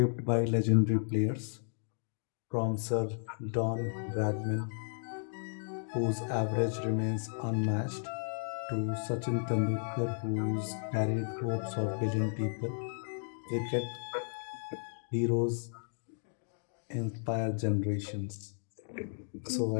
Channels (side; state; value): right; silent; digital silence